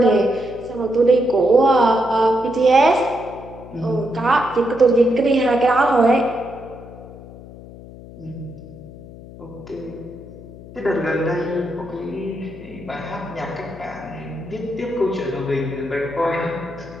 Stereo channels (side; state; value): left; noise; hum, 17 dB below the sound